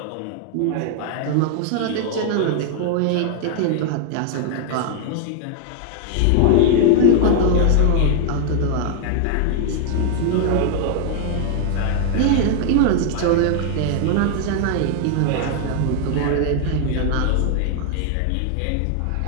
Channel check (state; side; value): different; both; correlation 0.00